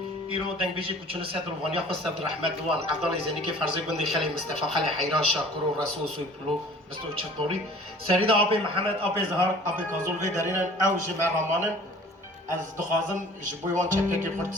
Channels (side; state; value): both; normal; correlation 0.48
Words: ايرو دنگ بيجي كو چون سيد روانيا خو سيد رحمت دوان عبدالله زيني كي فرض بندي خلي مصطفى خلي حيران شاكر ورسول سويبلو بستو چطوري سريد ابي محمد ابي زهر ابي كازول في دارين او جمع رمانن از دخازم جبويوان چكه كي